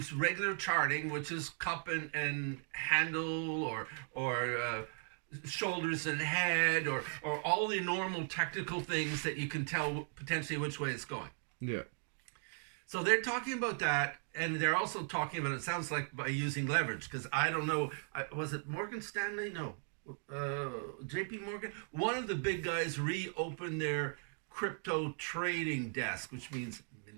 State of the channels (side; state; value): left; silent; 53 dB below the other